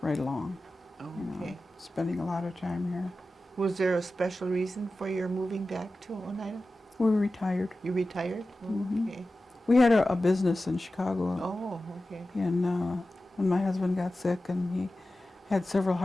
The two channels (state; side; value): normal; both; correlation 0.94